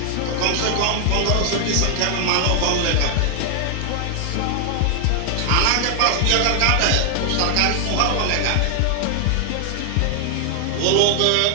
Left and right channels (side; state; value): both; different; correlation 0.00